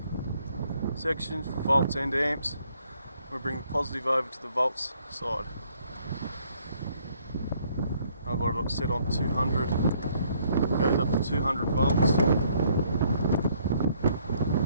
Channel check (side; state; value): both; inverted; correlation -0.66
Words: section for volts and amps. We bring the positive over to the volts side. I've got it set on 200. It goes up to 200 volts.